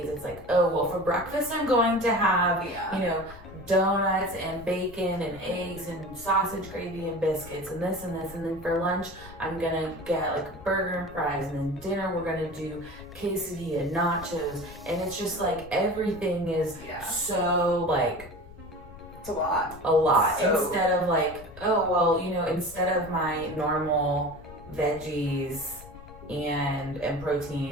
it's like, oh, well, for breakfast I'm going to have, donuts and bacon and eggs and sausage gravy and biscuits and this and this. And then for lunch, I'm gonna get like burger and fries. And then dinner, we're gonna do quesadilla, nachos. And it's just like everything is so like, it's a lot. So, instead of like, oh, well, instead of my normal veggies and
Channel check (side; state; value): left; noise; rumble, 18 dB below the sound